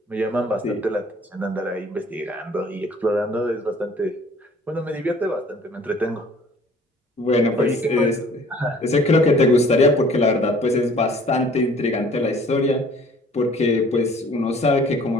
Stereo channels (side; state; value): both; normal; correlation 0.53